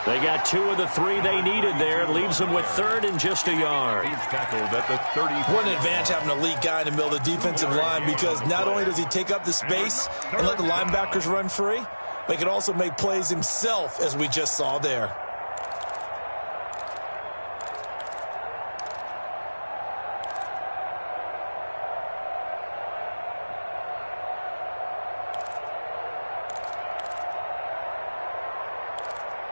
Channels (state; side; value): inverted; both; correlation -1.00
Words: They got 2 of the 3 they needed there. It leaves them with 3rd and just a yard. He's tackled at the 30. What an advantage having an elite guy in the middle of the defensive line, because not only does he take up the space and let the linebackers run free, but he can also make plays himself, as we just saw there.